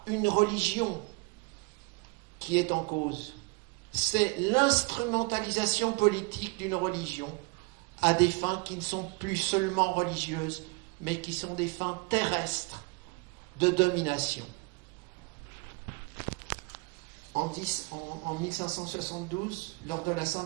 une religion qui est en cause, c'est l'instrumentalisation politique d'une religion à des fins qui ne sont plus seulement religieuses, mais qui sont des fins terrestres de domination. En 1572, lors de la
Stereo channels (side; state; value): left; quieter; 29.0 dB